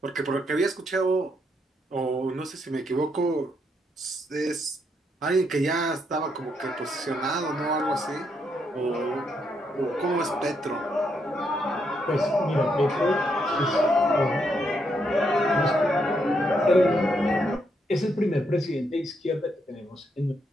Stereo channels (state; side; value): normal; both; correlation 0.77